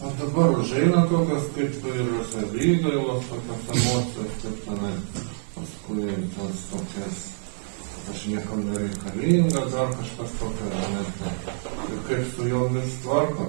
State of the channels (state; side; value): silent; left; digital silence